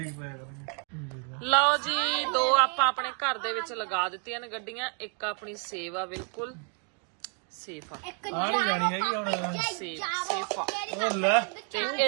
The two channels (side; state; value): left; quieter; 36.8 dB